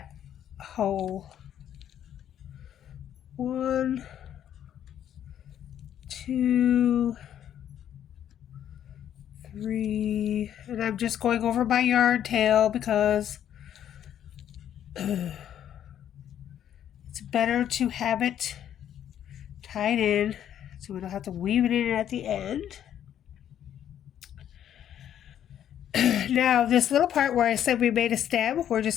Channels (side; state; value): right; quieter; 10.2 dB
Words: hole. 1, 2, 3, and I'm just going over my yarn tail because it's better to have it tied in so we don't have to weave it in at the end. Now this little part where I said we made a stem, we're